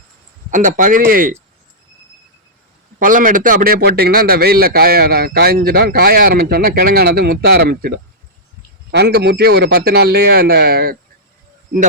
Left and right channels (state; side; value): normal; both; correlation -0.10